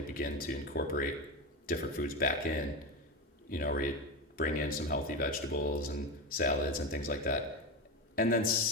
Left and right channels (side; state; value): both; normal; correlation 0.17